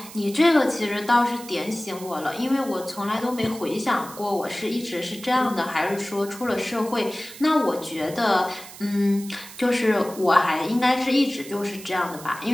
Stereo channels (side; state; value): right; noise; hiss, 16 dB below the sound